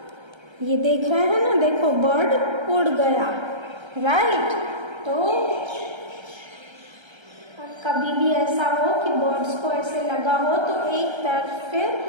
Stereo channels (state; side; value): late; left; 1.3 ms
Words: ये देख रहे हैं ना, देखो बर्ड उड़ गया। राइट। तो कभी भी ऐसा हो कि बर्ड्स को ऐसे लगा हो तो एक तरफ